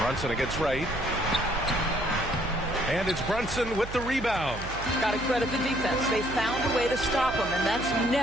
against Wright. And it's Brunson with the rebound. Got to credit the defense. They found a way to stop him, and that's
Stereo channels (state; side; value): noise; right; hum, 10 dB below the sound